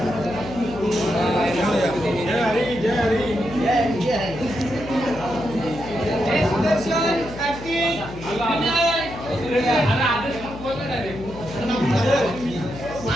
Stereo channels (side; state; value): left; noise; hum, 13 dB below the sound